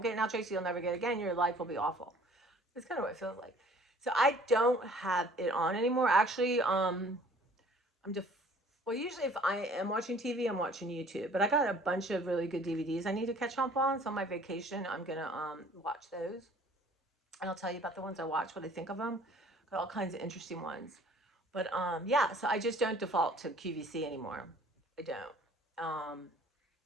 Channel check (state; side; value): normal; both; correlation 0.53